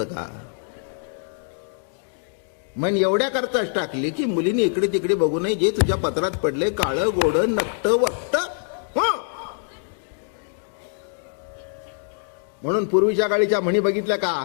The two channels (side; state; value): right; silent; 60 dB below the other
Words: का? मन एवढ्या करताच टाकली की मुलींनी इकडे तिकडे बघू नये, जे तुझ्या पत्रात पडले काळं गोड नकट वक्त. म्हणून पूर्वीच्या काळीच्या म्हणी बघितल्या का?